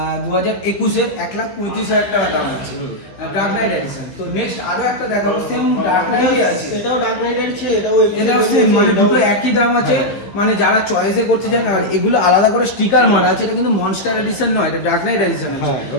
2021-এর 1,35,000 টাকা দাম আছে ডার্ক নাইট এডিশন। তো নেক্সট আরো একটা দেখাবো সেম ডার্ক নাইটই আছে। এটাও ডার্ক নাইট আছে, এটাও সেম, মানে দুটো একই দাম আছে। মানে যারা চয়েসে করতে চান, আর এগুলো আলাদা করে স্টিকার মারা আছে। এটা কিন্তু মনস্টার এডিশন নয়, এটা ডার্ক নাইট এডিশন আছে।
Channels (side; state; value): right; late; 15 ms